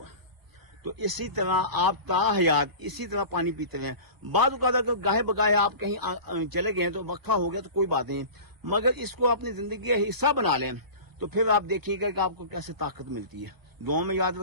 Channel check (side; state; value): left; late; 1.0 ms